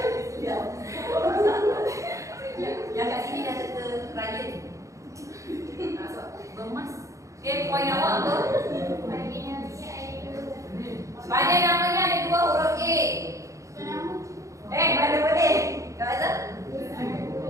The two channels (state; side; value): late; left; 0.15 ms